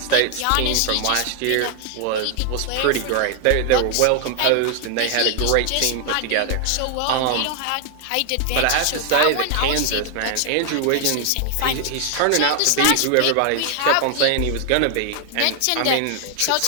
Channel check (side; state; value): both; different; correlation 0.00